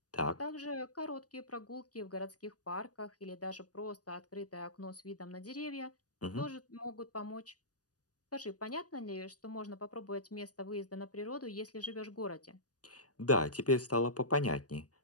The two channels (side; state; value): right; late; 0.68 ms